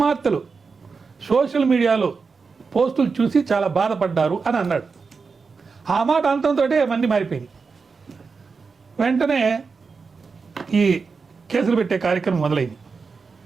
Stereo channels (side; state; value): left; quieter; 4.9 dB